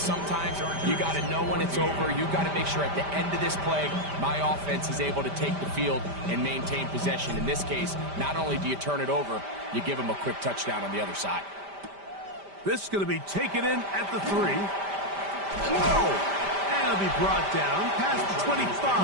you got to know when it's over. You got to make sure at the end of this play, my offense is able to take the field and maintain possession. In this case, not only do you turn it over, you give them a quick touchdown on the other side. This is going to be taken in at the 3. Whoa! And it'll be brought down past the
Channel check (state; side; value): late; left; 5.1 ms